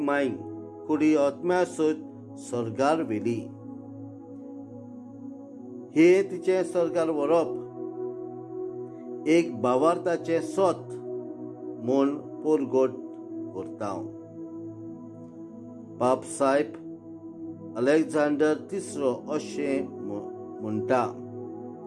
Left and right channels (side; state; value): both; identical; correlation 1.00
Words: मांयक कुडी आत्म्यासोत सर्गार व्हेली. हे तिचे सर्गार व्हरप एक भावार्थाचे सोत म्हूण परगट करता. पाप साहेब अलेक्झांडर तिसरो अशें म्हणटा,